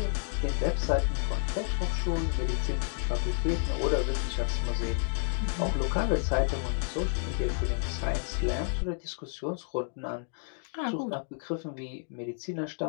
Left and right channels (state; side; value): silent; right; digital silence